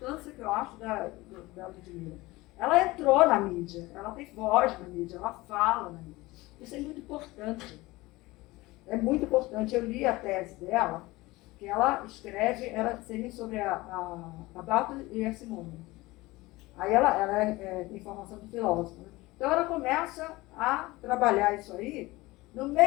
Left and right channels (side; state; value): right; quieter; 20.5 dB